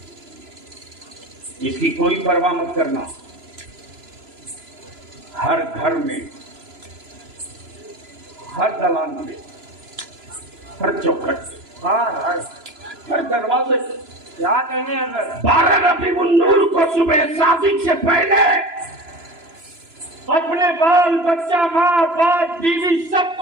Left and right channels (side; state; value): left; late; 3.0 ms